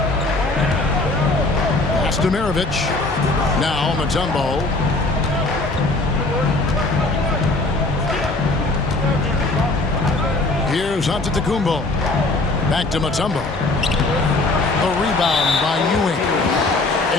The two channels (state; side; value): quieter; right; 3.0 dB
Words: Pass to Maravich. Now Mutombo. Here's Antetokounmpo. Back to Mutombo. The rebound by Ewing.